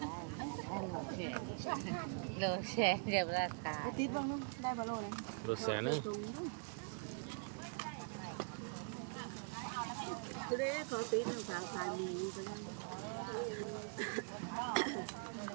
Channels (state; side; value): quieter; left; 39.6 dB